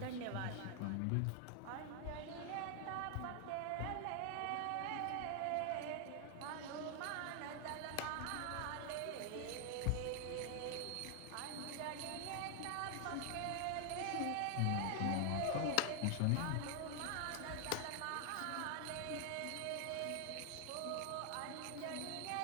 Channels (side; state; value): both; different; correlation 0.00